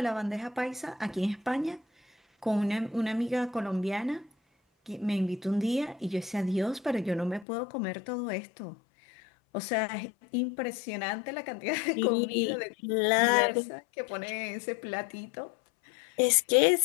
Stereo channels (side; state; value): right; drops out; at 7.5 s